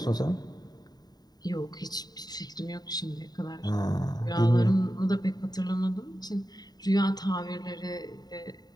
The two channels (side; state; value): right; late; 0.19 ms